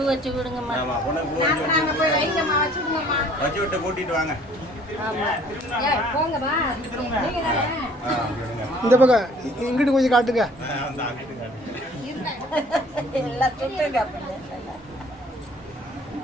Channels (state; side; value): normal; both; correlation 0.55